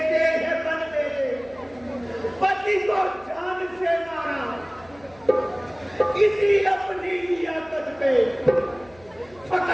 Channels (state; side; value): noise; left; hum, 27 dB below the sound